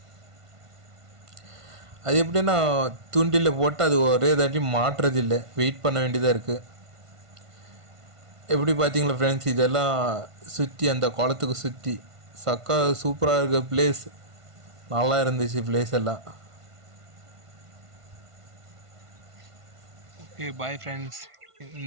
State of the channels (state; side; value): late; left; 1.5 ms